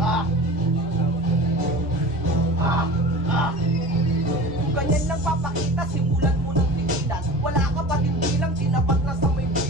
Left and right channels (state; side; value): noise; left; rumble, 15 dB below the sound